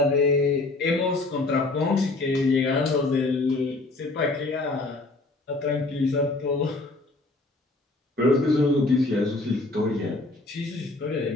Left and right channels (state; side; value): quieter; right; 3.1 dB